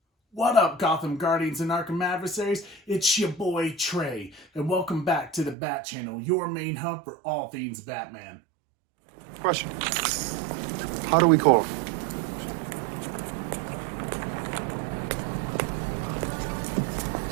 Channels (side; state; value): left; drops out; at 5.6 s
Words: What up, Gotham Guardians and Arkham Adversaries? It's your boy Trey, and welcome back to the Bat Channel, your main hub for all things Batman. Question. How do we call him?